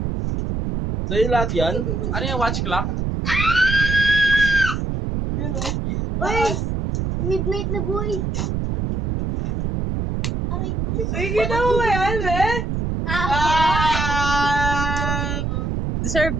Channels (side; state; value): right; noise; rumble, 1 dB below the sound